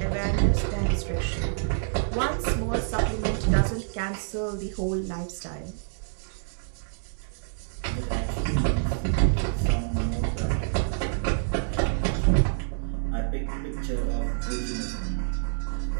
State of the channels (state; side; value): silent; left; digital silence